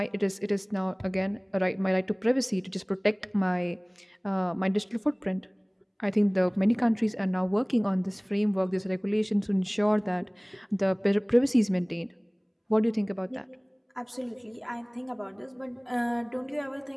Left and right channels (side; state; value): both; identical; correlation 1.00